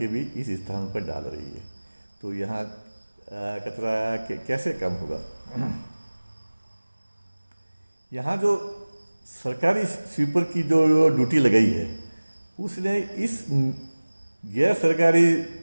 भी इस स्थान पर डाल रही है। तो यहाँ कचरा कैसे कम होगा? यहाँ जो सरकारी स्वीपर की जो ड्यूटी लगाई है, उसने इस गैर सरकारी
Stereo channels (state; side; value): inverted; both; correlation -1.00